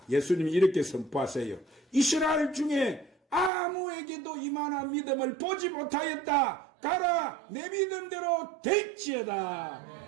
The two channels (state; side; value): drops out; left; at 3.5 s